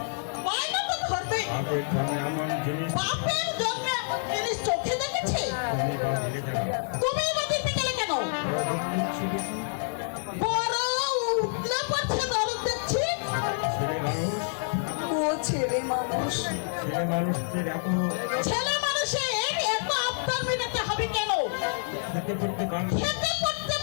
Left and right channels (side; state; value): right; silent; 59 dB below the other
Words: বায়না তো ধরবে, বাপের জন্মে এমন জিনিস চোখে দেখেছে? তুমি বা দিতে গেলে কেন? বড় উঠলে পড়ছে দরদ দেখছি। ও ছেলে মানুষ, ছেলে মানুষের এত আবদার মেটাতে হবে কেন? খেতে পড়তে